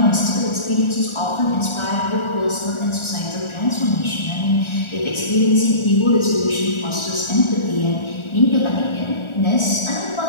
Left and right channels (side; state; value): right; late; 1.4 ms